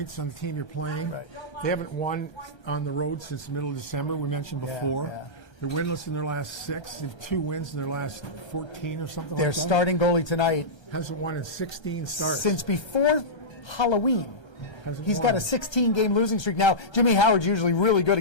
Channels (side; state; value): right; late; 1.3 ms